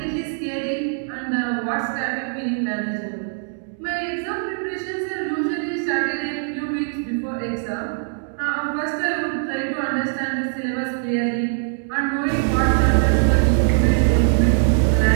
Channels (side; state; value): left; silent; digital silence